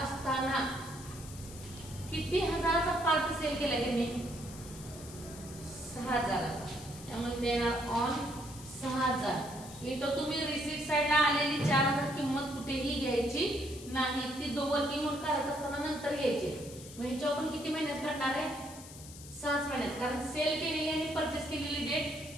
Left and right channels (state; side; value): noise; left; hiss, 16 dB below the sound